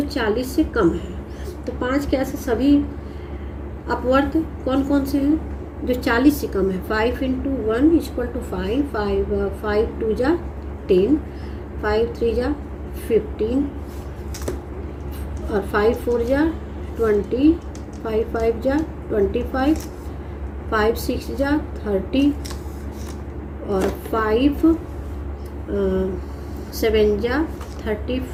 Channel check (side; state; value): both; identical; correlation 1.00